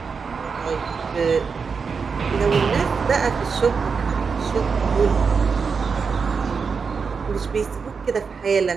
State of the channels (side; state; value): left; quieter; 5.4 dB